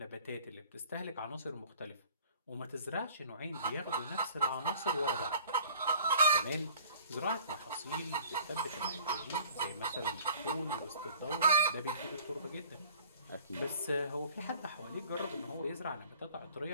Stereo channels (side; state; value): both; inverted; correlation -0.50